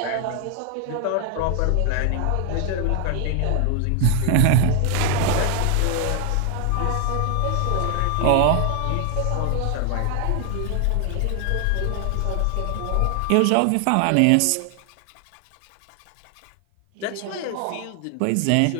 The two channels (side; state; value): both; different; correlation 0.00